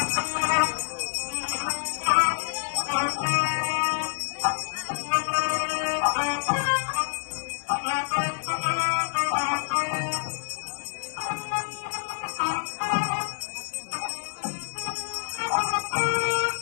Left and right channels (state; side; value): silent; right; 59 dB below the other